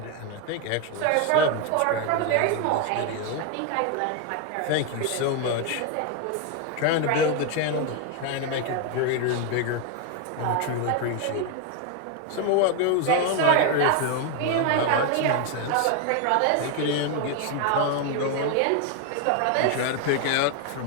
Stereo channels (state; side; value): different; both; correlation 0.01